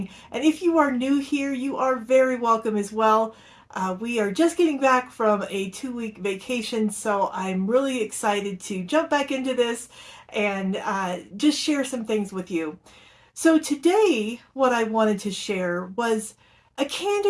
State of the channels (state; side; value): identical; both; correlation 1.00